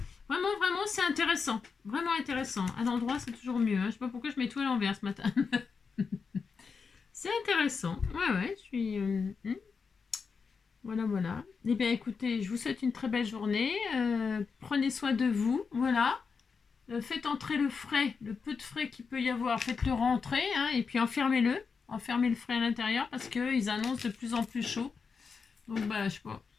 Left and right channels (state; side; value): quieter; right; 5.3 dB